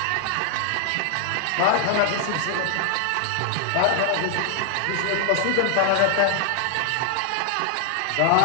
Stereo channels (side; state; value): both; different; correlation 0.00